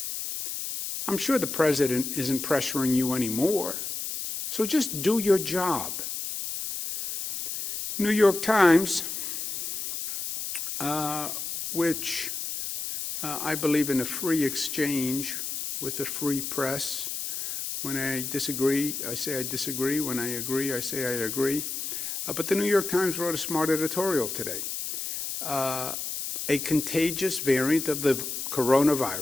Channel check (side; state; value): left; noise; hiss, 5 dB below the sound